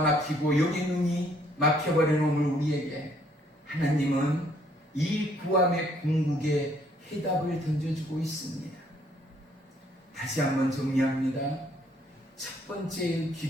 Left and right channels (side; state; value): both; normal; correlation 0.66